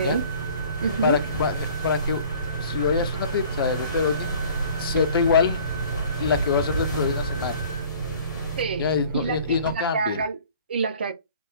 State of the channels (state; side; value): inverted; both; correlation -0.50